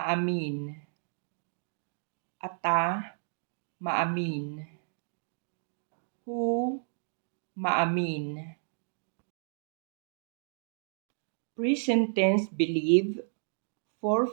Ata, maamin. Hu, maamin. Present tense believe for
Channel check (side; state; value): left; silent; digital silence